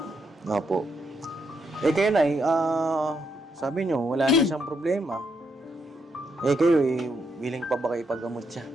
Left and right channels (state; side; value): normal; both; correlation 0.78